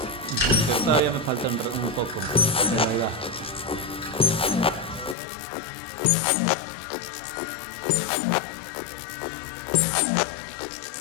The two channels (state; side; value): drops out; right; at 5.2 s